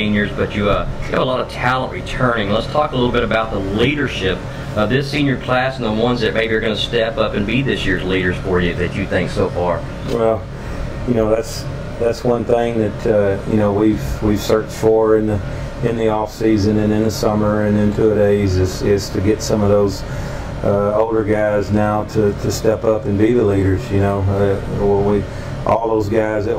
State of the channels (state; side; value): identical; both; correlation 1.00